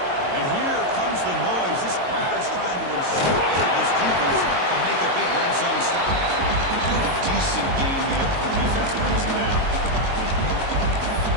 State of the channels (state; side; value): late; left; 22 ms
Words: And here comes the noise. This crowd is trying to inspire this defense to make a big red zone stop. Doing a decent game there before the defense brings him down.